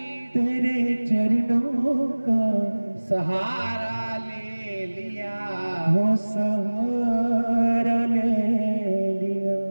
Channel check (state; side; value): inverted; both; correlation -1.00